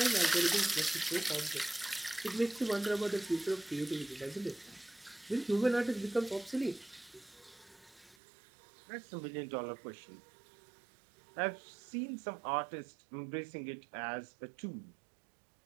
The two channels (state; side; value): drops out; left; at 8.2 s